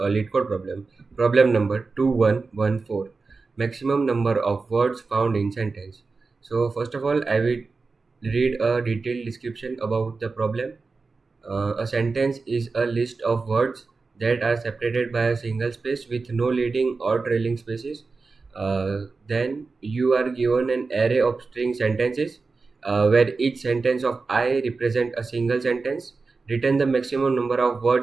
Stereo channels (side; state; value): left; quieter; 4.2 dB